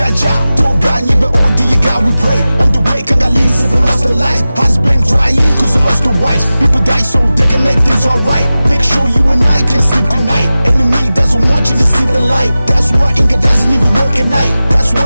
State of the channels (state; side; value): inverted; both; correlation -0.96